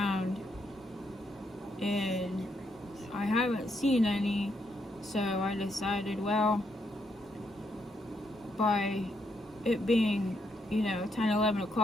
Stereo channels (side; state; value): both; normal; correlation 0.77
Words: and I haven't seen any. So I decided, well, by it being, you know, 10, 11